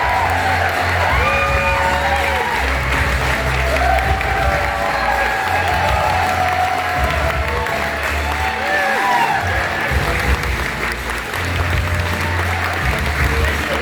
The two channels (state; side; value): identical; both; correlation 1.00